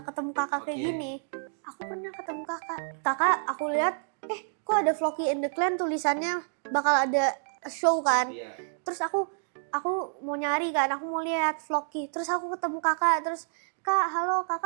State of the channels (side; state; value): left; silent; digital silence